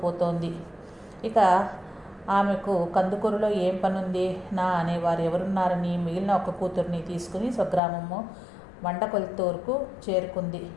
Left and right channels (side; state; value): right; drops out; at 7.8 s